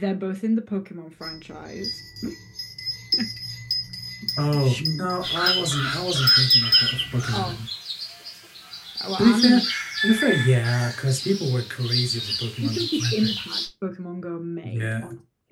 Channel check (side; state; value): both; identical; correlation 1.00